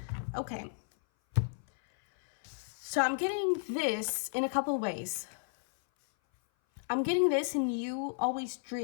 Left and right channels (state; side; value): silent; right; 56 dB below the other